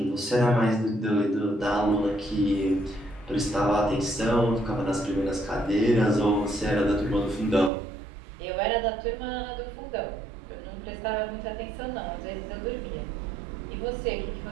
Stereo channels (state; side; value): drops out; left; at 7.7 s